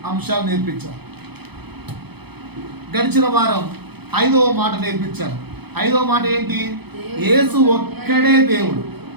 అంశాలు నేర్పించారు. గడిచిన వారం 5వ మాట నేర్పించారు. 5వ మాట ఏంటి? యేసు ఒక్కడే దేవుడు.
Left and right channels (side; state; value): left; late; 0.98 ms